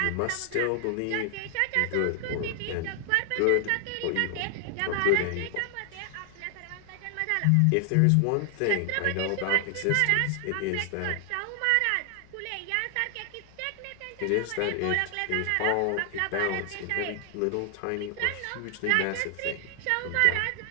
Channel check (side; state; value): both; different; correlation 0.00